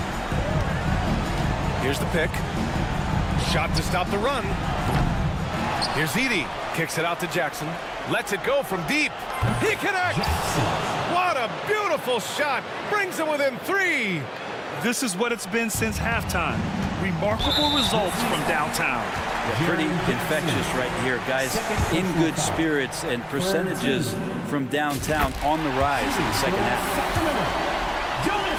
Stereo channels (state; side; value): identical; both; correlation 1.00